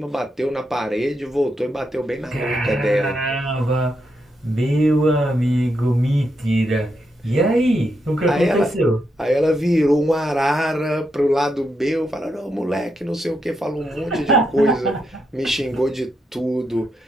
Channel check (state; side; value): normal; both; correlation 0.82